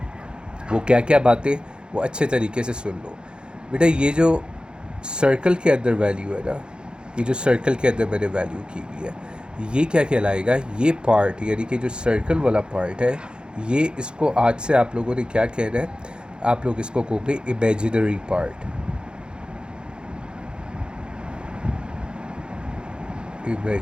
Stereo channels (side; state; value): left; late; 0.050 ms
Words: वो क्या क्या बातें, वो अच्छे तरीके से सुन लो। बेटा, ये जो सर्कल के अंदर वैल्यू है ना, ये जो सर्कल के अंदर मैंने वैल्यू की हुई है, ये क्या कहलाएगा, ये पार्ट यानी कि जो सर्कल वाला पार्ट है, ये इसको आज से आप लोगों ने क्या कहना है, आप लोग इसको कहोगे इमेजिनरी पार्ट।